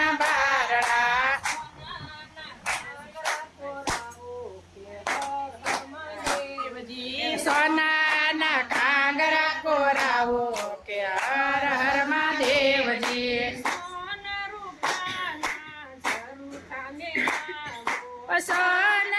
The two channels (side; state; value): both; identical; correlation 1.00